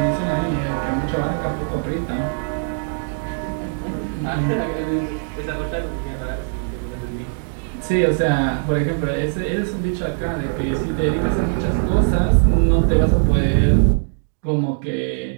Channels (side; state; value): left; silent; digital silence